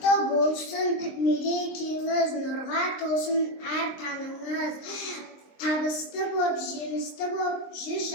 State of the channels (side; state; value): right; late; 23 ms